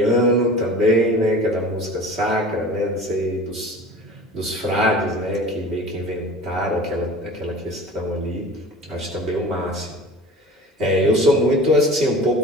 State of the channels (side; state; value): both; normal; correlation 0.39